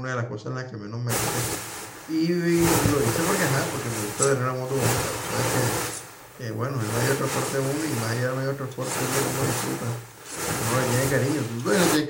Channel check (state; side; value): identical; both; correlation 1.00